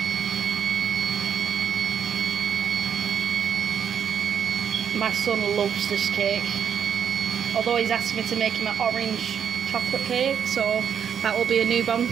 My son loves this cake, although he's asked me to make him an orange chocolate cake, so that will be a new bomb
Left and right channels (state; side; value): quieter; left; 8.0 dB